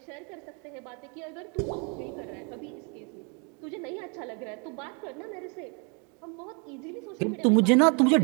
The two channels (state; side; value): quieter; left; 34.9 dB